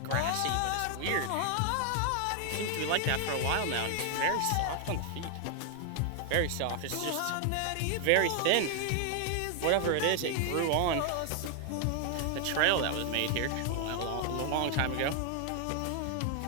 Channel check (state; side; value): different; both; correlation 0.00